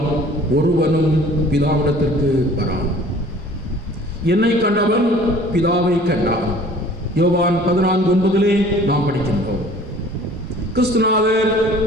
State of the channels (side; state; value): both; normal; correlation 0.50